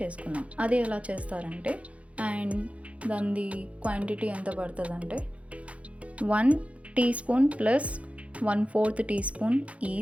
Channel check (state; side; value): late; left; 0.064 ms